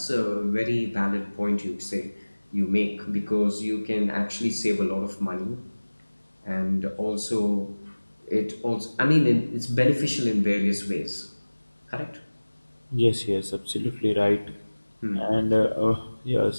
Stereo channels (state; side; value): inverted; both; correlation -1.00